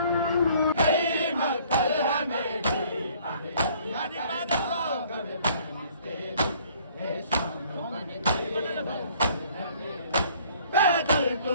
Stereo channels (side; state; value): both; inverted; correlation -0.58